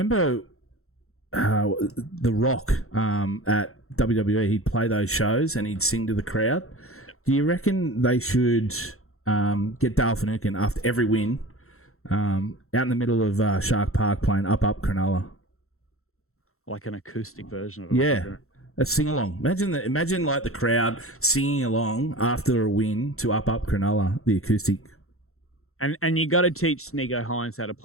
The Rock at WWE? He'd play those shows and he'd sing to the crowd. Do you reckon they should get Dale Finucane after every win out in the middle of Shark Park playing Up Up Cronulla? Like an acoustic version of it. Yeah. A sing along. Imagine like the crowd singing along after a win to Up Up Cronulla, the acoustic. And you got to teach Sneeko Hines how to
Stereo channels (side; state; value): right; late; 0.63 ms